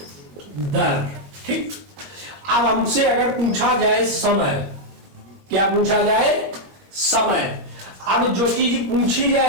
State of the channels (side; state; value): left; late; 21 ms